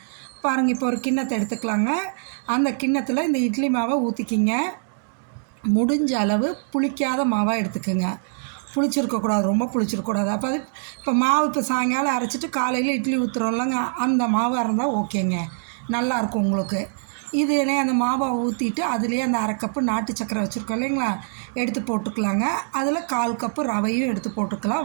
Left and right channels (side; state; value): left; silent; digital silence